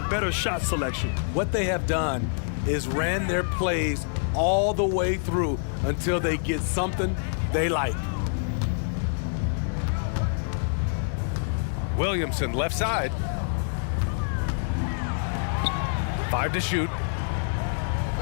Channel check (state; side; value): silent; right; 57 dB below the other